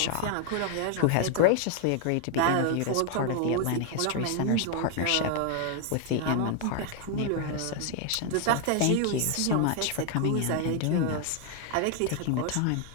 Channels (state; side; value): different; both; correlation 0.00